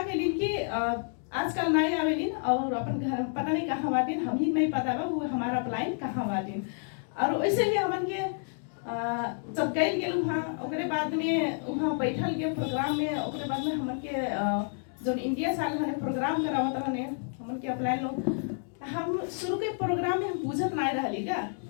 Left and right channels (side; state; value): right; silent; 58 dB below the other